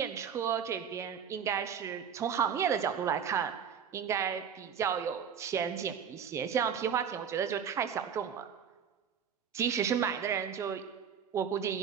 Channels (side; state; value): left; quieter; 7.6 dB